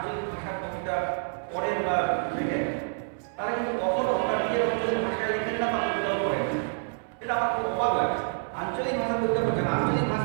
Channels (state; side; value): silent; left; 59 dB below the other